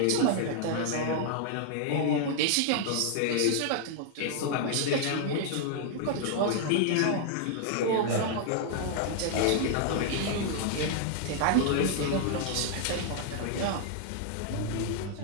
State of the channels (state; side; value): different; both; correlation 0.00